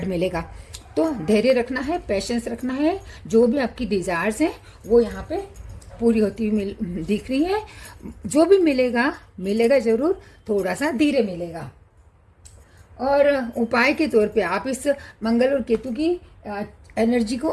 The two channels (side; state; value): both; identical; correlation 1.00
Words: मिलेगा। तो धैर्य रखना है, पेशेंस रखना है, जो भी आपकी डिजायर्स हैं वो यहाँ पे पूरी होती हुई दिख रही है। जो भी मिलेगा जरूर, थोड़ा सा धीरे मिलेगा। और उपाय के तौर पे आप इस मंगल और केतु की एनर्जी को